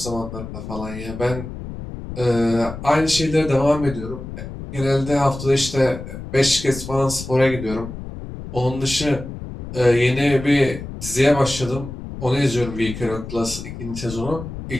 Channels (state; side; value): noise; left; rumble, 10 dB below the sound